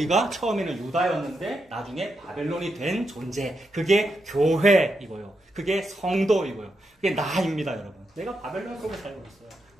처음에는 유다였는데 나중에 바벨론이 된 존재. 그게 교회이고요. 그게 성도이고요. 그게 나입니다, 여러분. 내가 바벨론 속에 살고 있어요.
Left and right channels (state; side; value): normal; both; correlation 0.84